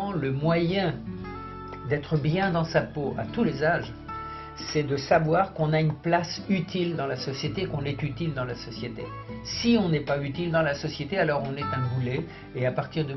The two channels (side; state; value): both; identical; correlation 1.00